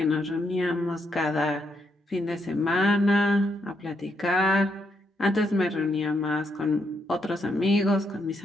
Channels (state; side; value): normal; both; correlation 0.78